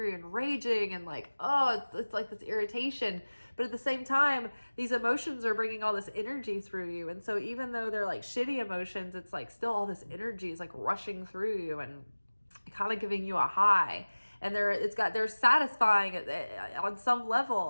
and raging and like, it's like this irritation. But at the same time, these emotions are bringing all this energy through you. And so even though they're like shitty emotions, it's like still all this energy is like rushing through you and kind of giving you a high, and they're satisfying on some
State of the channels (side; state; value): both; inverted; correlation -1.00